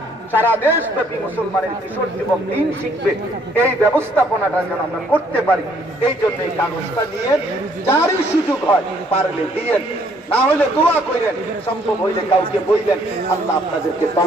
সারা দেশব্যাপী মুসলমানের কিশোর যুবক দিন শিখবে, এই ব্যবস্থাপনাটা যেন আমরা করতে পারি। এই জন্য এই কাগজটা নিয়ে যারই সুযোগ হয় পারলে দিয়েন, না হলে দোয়া করেন, সম্ভব হইলে কাউকে বললেন। আল্লাহ আপনাদেরকে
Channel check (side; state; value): both; normal; correlation 0.65